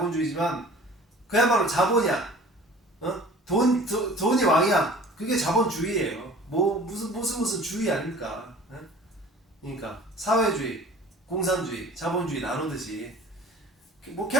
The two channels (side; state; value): both; normal; correlation 0.46